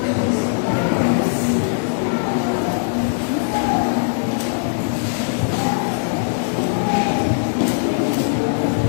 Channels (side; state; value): right; silent; 66 dB below the other